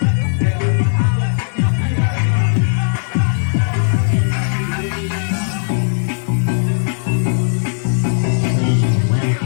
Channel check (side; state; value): right; silent; digital silence